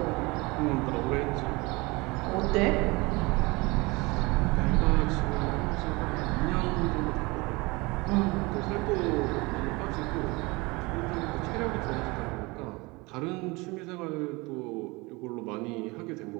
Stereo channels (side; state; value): left; quieter; 24.8 dB